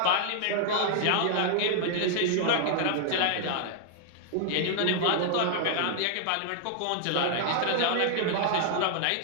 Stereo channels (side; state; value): both; different; correlation -0.01